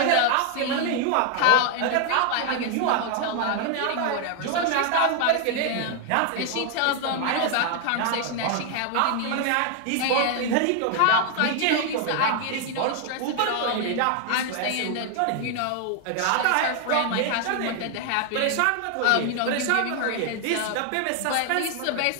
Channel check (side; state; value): both; different; correlation 0.00